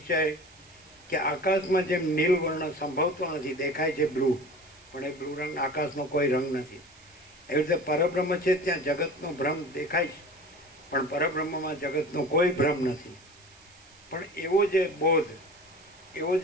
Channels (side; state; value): right; noise; hiss, 25 dB below the sound